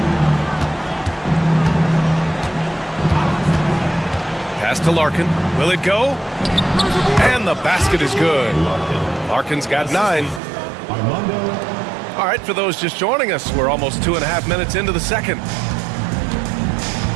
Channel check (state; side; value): drops out; left; at 10.4 s